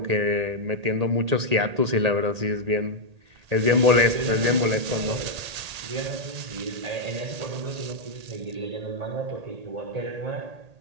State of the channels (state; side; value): late; left; 1.8 ms